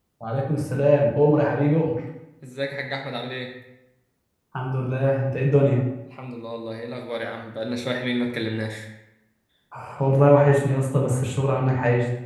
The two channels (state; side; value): identical; both; correlation 1.00